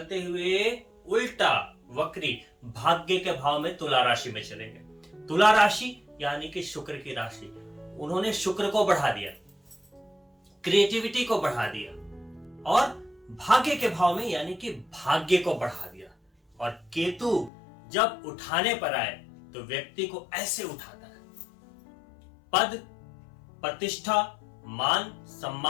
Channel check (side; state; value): right; drops out; at 17.5 s